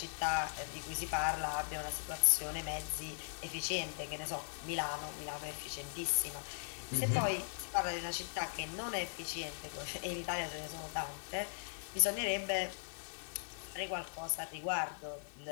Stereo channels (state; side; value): silent; right; digital silence